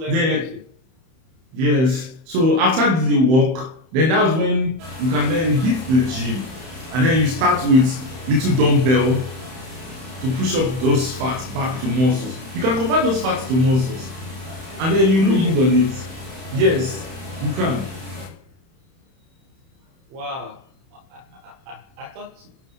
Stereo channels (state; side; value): late; left; 31 ms